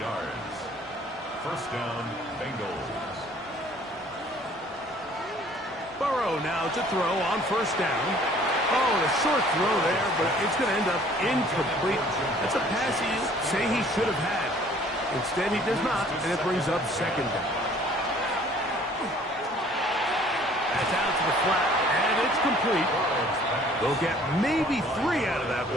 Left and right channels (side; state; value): both; normal; correlation 0.55